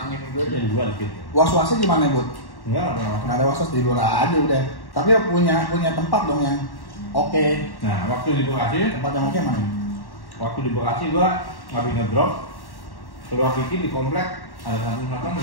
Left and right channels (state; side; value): late; right; 1.1 ms